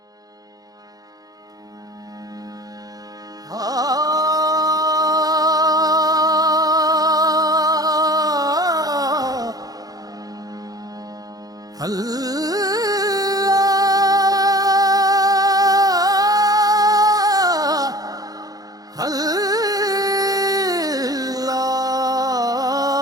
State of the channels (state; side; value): late; left; 0.18 ms